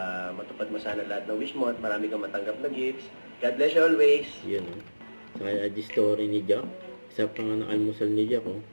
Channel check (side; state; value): both; inverted; correlation -1.00